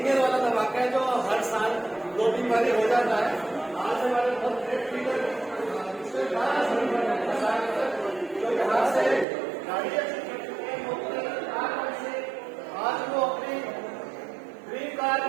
केयर वाला धमाका है जो हर साल 2-3 बार हो जाता है। आज हमारे बहुत ग्रेट लीडर जो यहाँ से गाड़ी आज वो अपनी ड्रीम कार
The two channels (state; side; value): drops out; left; at 9.2 s